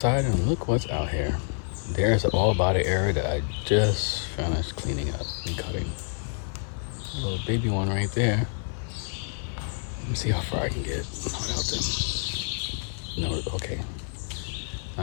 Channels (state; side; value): silent; right; digital silence